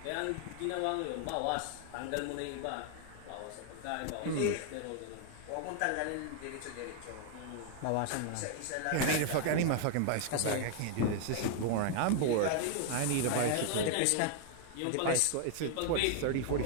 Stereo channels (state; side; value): different; both; correlation 0.00